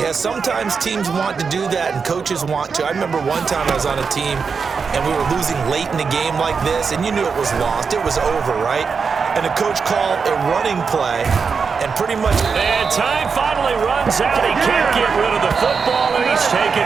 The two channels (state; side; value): quieter; left; 5.5 dB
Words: sometimes teams want to do that and coaches want to. I remember one time I was on a team and we were losing late in the game like this, and you knew it was lost. It was over, right? And the coach called a running play and pretty much... And time finally runs out. He can't get rid of the football, and he's taken